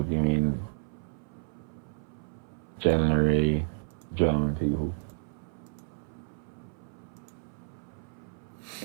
do you mean generally German people?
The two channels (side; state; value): left; silent; 57 dB below the other